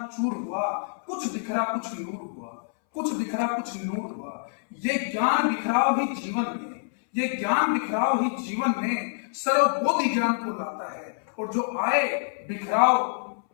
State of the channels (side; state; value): right; silent; 60 dB below the other